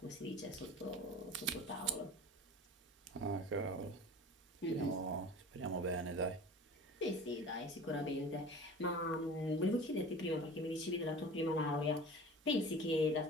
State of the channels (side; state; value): both; normal; correlation 0.39